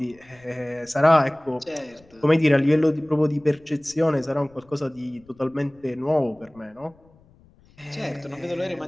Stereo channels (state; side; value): noise; left; rumble, 29 dB below the sound